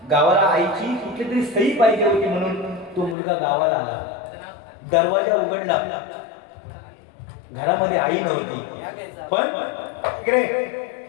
गावाला आईची कुठली तरी सही पाहिजे होती म्हणून तो मुलगा गावाला आला. दरवाजा उघडला. घरामध्ये आई नव्हती. पण इकडे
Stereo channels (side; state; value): right; drops out; at 3.2 s